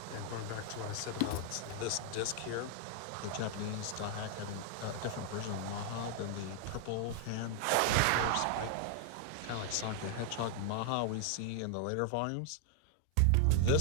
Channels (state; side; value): different; both; correlation 0.00